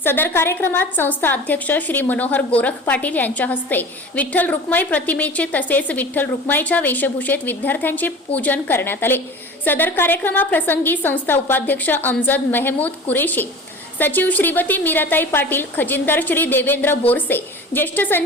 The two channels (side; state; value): both; normal; correlation 0.38